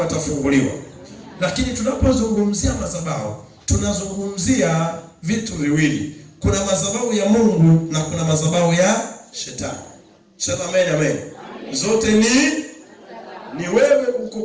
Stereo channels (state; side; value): identical; both; correlation 1.00